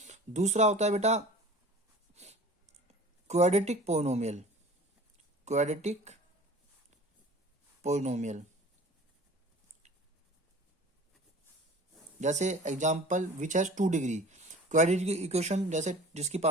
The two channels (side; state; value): both; normal; correlation 0.42